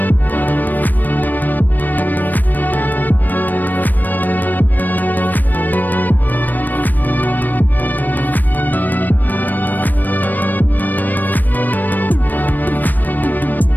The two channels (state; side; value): late; right; 0.088 ms